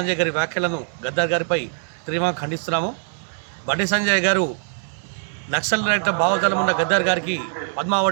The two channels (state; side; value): silent; left; digital silence